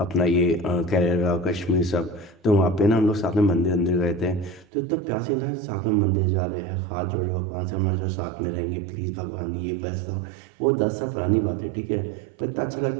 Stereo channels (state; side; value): drops out; left; at 4.7 s